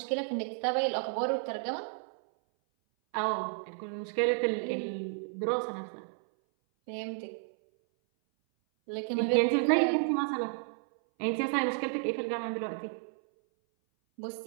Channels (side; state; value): left; silent; 56 dB below the other